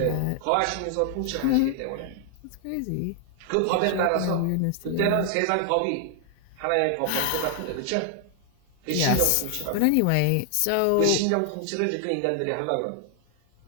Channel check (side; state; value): both; different; correlation 0.00